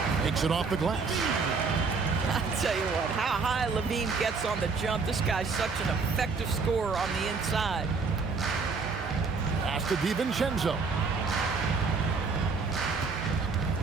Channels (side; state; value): left; quieter; 4.6 dB